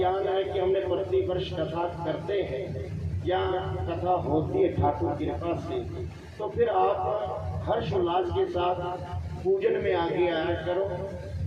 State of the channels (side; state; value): both; identical; correlation 1.00